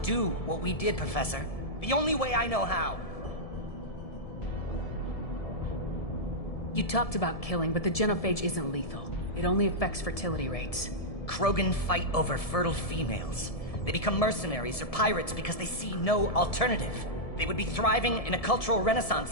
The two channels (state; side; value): late; right; 1.7 ms